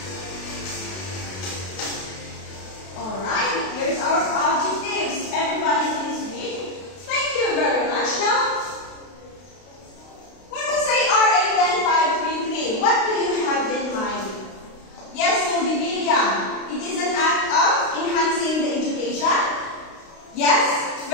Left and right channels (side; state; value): right; late; 32 ms